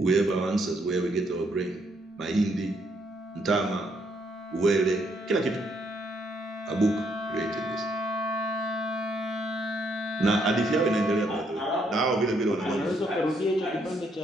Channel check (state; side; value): normal; both; correlation 0.72